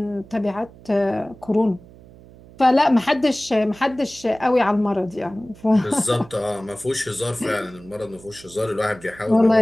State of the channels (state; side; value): noise; right; hum, 22 dB below the sound